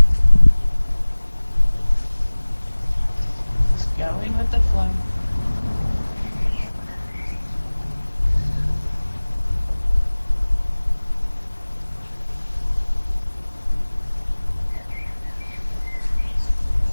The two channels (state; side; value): inverted; both; correlation -1.00